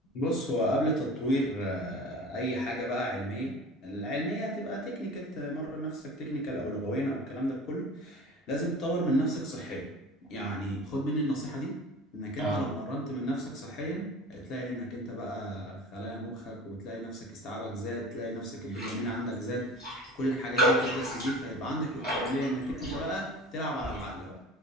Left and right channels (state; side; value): normal; both; correlation 0.39